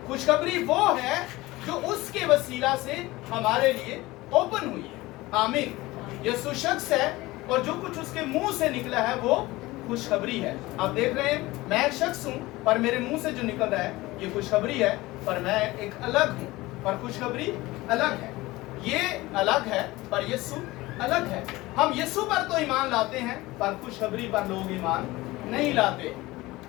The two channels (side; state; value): right; quieter; 19.6 dB